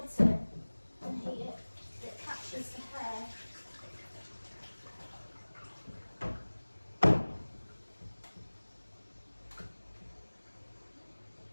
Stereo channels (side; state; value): both; inverted; correlation -1.00